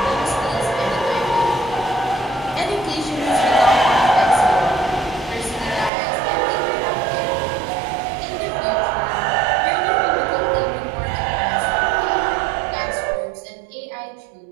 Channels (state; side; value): drops out; left; at 5.9 s